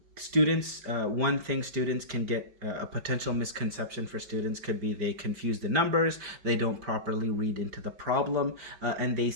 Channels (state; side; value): late; left; 5.3 ms